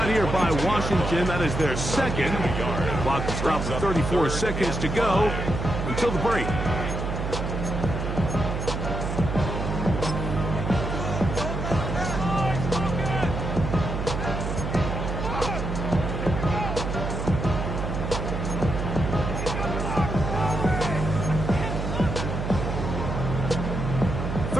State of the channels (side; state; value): right; noise; hum, 3 dB below the sound